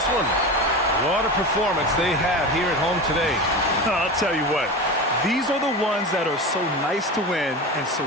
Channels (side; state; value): both; normal; correlation 0.26